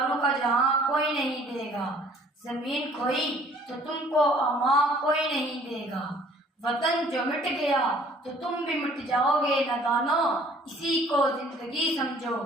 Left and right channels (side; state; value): both; normal; correlation 0.56